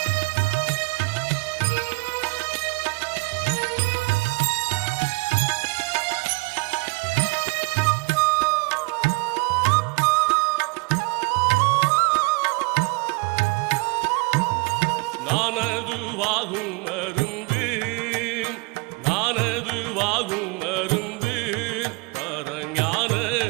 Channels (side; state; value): left; quieter; 28.1 dB